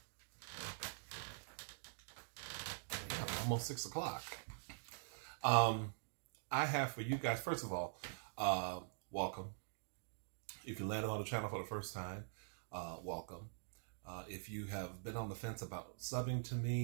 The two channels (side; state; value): left; silent; digital silence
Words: almost 6 o'clock. I have for you guys, first of all, welcome. If you landed on the channel for the first time, welcome. If you have been on the fence about subbing to